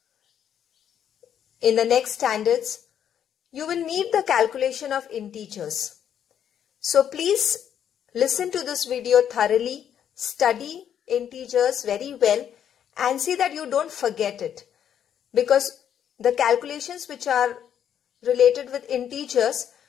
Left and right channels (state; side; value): quieter; right; 9.3 dB